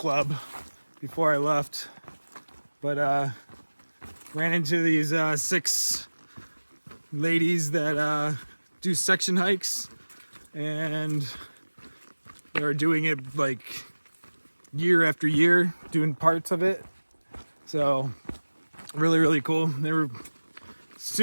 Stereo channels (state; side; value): inverted; both; correlation -1.00